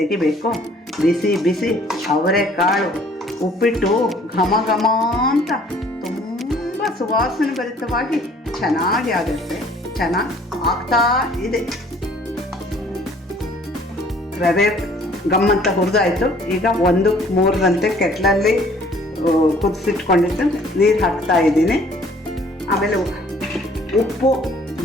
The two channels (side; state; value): both; normal; correlation 0.56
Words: ಬಿಸಿ ಬಿಸಿ ಅವರೆಕಾಳು ಉಪ್ಪಿಟ್ಟು ಘಮ ಅಂತ ತುಂಬ ಸುವಾಸನೆ ಭರಿತವಾಗಿ ಚೆನ್ನಾಗಿ ಆಗುತ್ತೆ. ಚೆನ್ನಾಗಿ ಆಗ್ತಾ ಇದೆ. ರವೆ ಗಮ್ಮಂತ ಹುರಿದಾಯಿತು. ಈಗ 1-3ರಂತೆ ಕೆಟ್ಲಲ್ಲಿ ಕುದಿಸಿಟ್ಕೊಂಡಿದ್ದು ನೀರು ಹಾಕ್ತಾ ಇದ್ದೀನಿ. ಆಮೇಲೆ ಉಪ್ಪು,